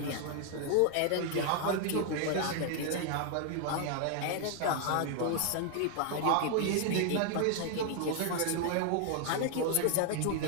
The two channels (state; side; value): different; both; correlation 0.00